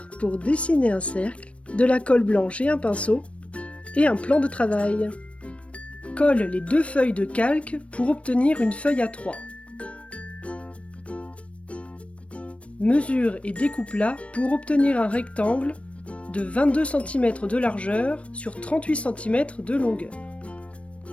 pour dessiner un cercle, de la colle blanche et un pinceau, et un plan de travail. Colle les 2 feuilles de calque pour obtenir une feuille A3. Mesure et découpe-la pour obtenir un rectangle de 22 cm de largeur sur 38 cm de longueur.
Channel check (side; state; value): right; late; 0.062 ms